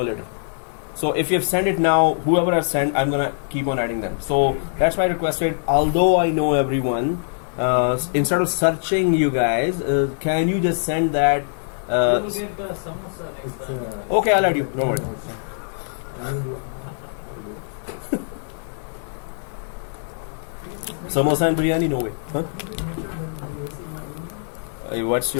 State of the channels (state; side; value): silent; right; 56 dB below the other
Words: later. So if you have sent it now, whoever has sent, I'm gonna keep on adding them. So that's why I requested, although I know everyone, instead of searching you guys, can you just send that? You will get the samosa next time. Okay, I'll add you. Don't worry. Samosa and biryani, no way. Huh? What's